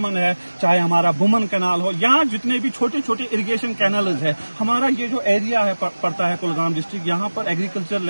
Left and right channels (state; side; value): inverted; both; correlation -1.00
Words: ہے، چاہے ہمارا بومن کینال ہو، یا جتنے بھی چھوٹے چھوٹے اریگیشن کینالز ہے، ہمارا یہ جو ایریا ہے پڑتا ہے کلگام ڈسٹرکٹ، یہاں پر ایگریکلچر